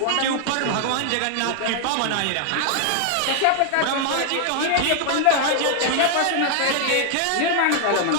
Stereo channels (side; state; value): both; different; correlation 0.00